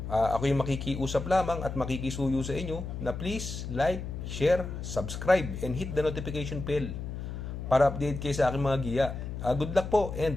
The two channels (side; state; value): left; noise; hum, 6 dB below the sound